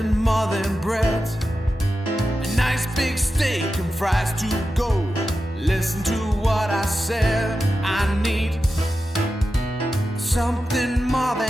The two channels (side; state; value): both; normal; correlation 0.91